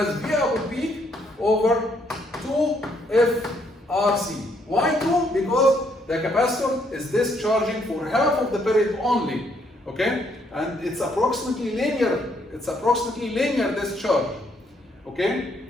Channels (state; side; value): normal; both; correlation 0.71